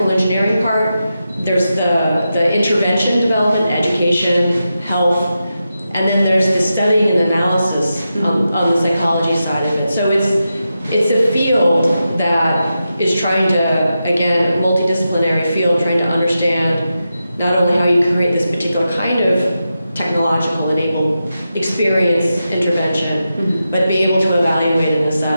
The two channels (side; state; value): both; inverted; correlation -0.89